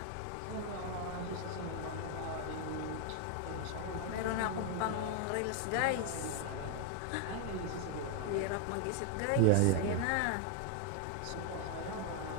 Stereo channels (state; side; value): different; both; correlation 0.01